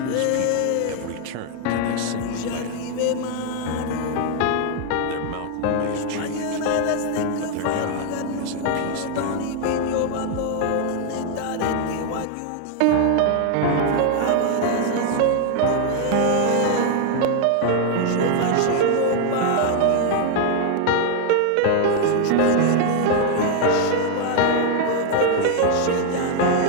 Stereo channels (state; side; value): different; both; correlation 0.00